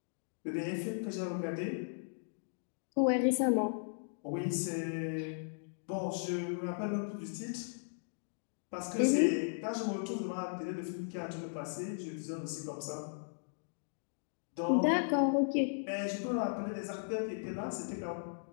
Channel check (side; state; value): right; silent; digital silence